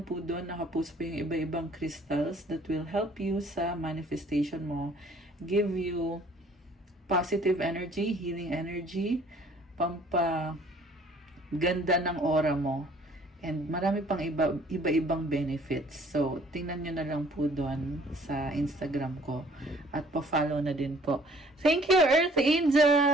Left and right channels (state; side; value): normal; both; correlation 0.57